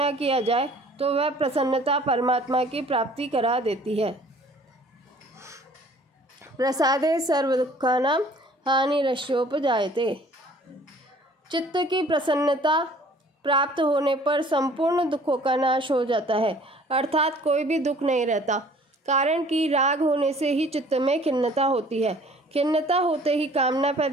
किया जाए, तो वह प्रसन्नता परमात्मा की प्राप्ति करा देती है। प्रसादे सर्व दुखानां हानिरस्योपजायते, चित्त की प्रसन्नता प्राप्त होने पर संपूर्ण दुखों का नाश हो जाता है, अर्थात कोई भी दुख नहीं रहता, कारण कि राग होने से ही चित्त में खिन्नता होती है। खिन्नता होते ही कामना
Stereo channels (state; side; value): normal; both; correlation 0.53